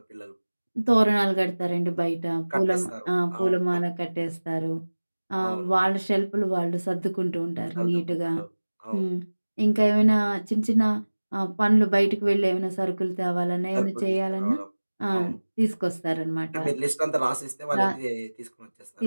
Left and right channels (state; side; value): inverted; both; correlation -1.00